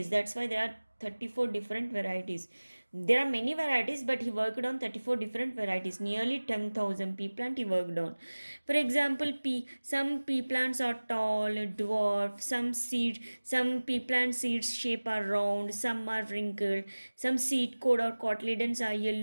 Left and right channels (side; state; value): both; inverted; correlation -1.00